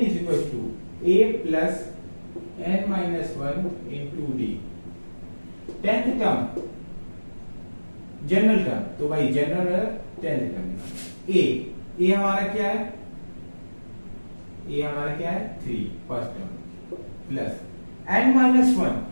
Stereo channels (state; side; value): inverted; both; correlation -1.00